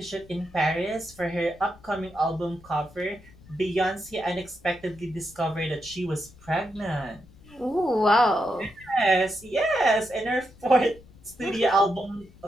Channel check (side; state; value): left; noise; rumble, 23 dB below the sound